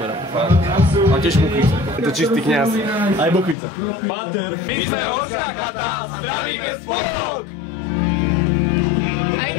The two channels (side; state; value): right; drops out; at 3.6 s